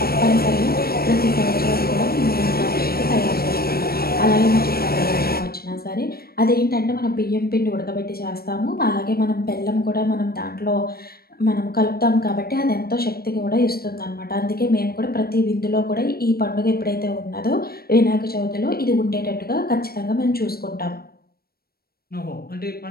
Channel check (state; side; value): late; right; 0.44 ms